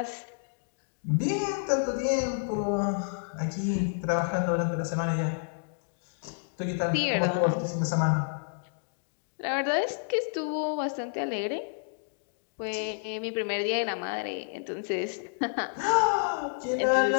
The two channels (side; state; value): right; silent; digital silence